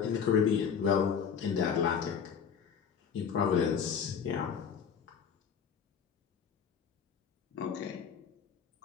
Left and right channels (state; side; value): quieter; right; 7.0 dB